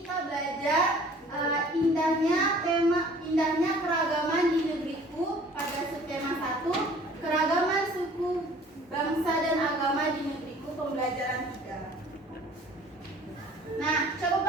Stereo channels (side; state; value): both; normal; correlation 0.51